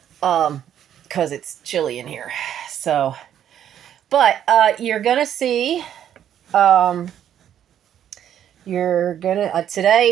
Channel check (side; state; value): left; quieter; 10.1 dB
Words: Because it's chilly in here. So, but you're gonna see,